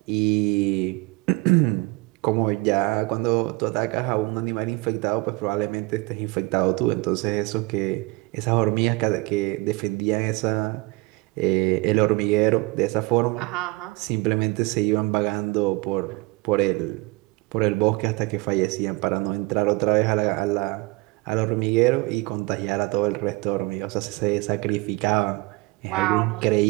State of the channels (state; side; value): quieter; left; 24.2 dB